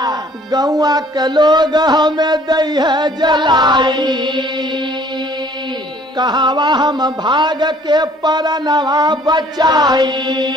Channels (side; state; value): both; normal; correlation 0.57